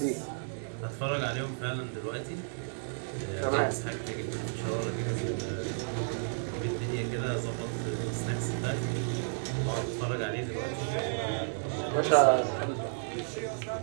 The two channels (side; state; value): left; silent; digital silence